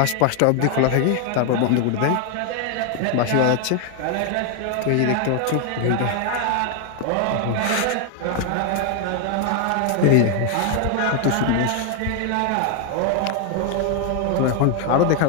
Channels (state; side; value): different; both; correlation 0.00